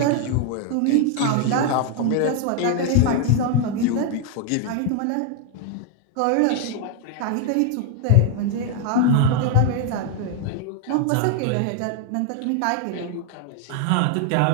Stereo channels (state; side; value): different; both; correlation 0.00